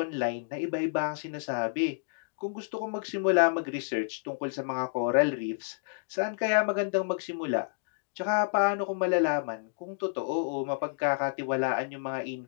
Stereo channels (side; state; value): right; silent; digital silence